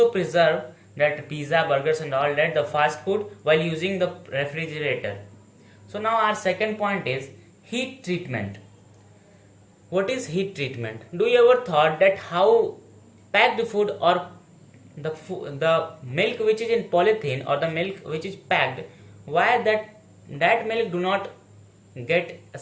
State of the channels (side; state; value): both; identical; correlation 1.00